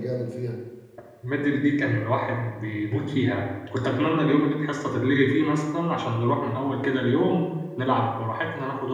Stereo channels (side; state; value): both; identical; correlation 1.00